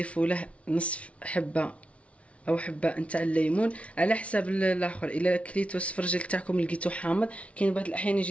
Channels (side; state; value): right; late; 0.063 ms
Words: له نصف حبه او حبه نتاع الليمون على حساب الاخر. الا كليتو السفرجل تاعكم لقيتو حامض، كاين بعض الاحيان يجي